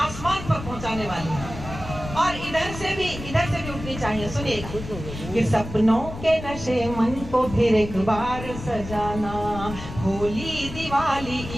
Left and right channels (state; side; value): noise; left; rumble, 10 dB below the sound